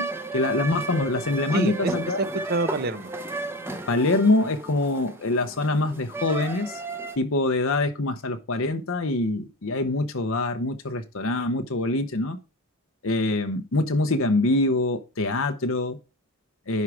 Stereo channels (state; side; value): normal; both; correlation 0.28